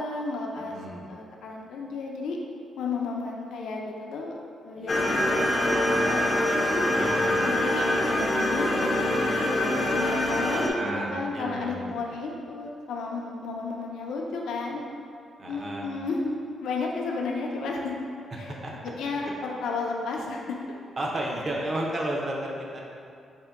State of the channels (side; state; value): both; normal; correlation 0.79